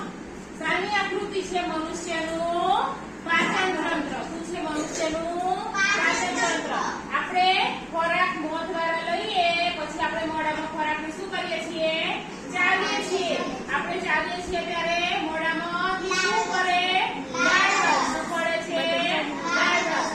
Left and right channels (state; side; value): identical; both; correlation 1.00